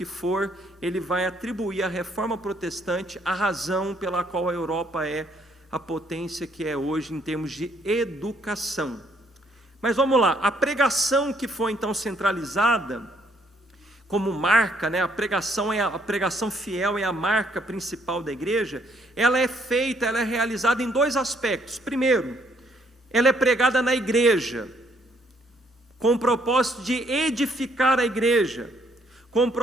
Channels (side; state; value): both; normal; correlation 0.68